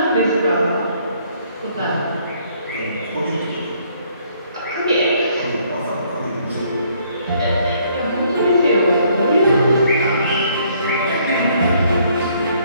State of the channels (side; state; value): both; inverted; correlation -0.65